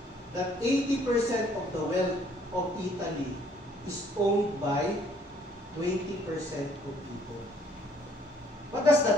that 80% of the wealth of Italy is owned by 20% of people. What does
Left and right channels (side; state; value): both; normal; correlation 0.62